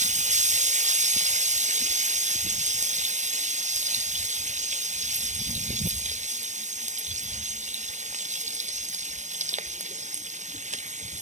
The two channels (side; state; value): left; late; 0.34 ms